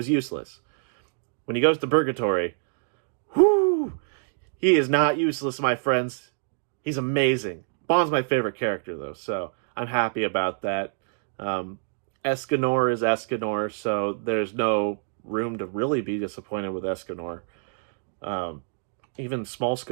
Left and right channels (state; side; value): silent; left; digital silence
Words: useless. When he goes to Purgatory, he is not useless, my friends. He's amazing. Bon's my favorite character, though, so I'm happy about that. Escanor is Escanor, so there's no room to really be disappointed with Escanor. Even small